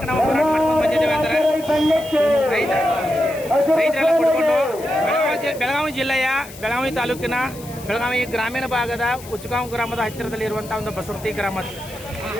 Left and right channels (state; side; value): noise; left; hiss, 18 dB below the sound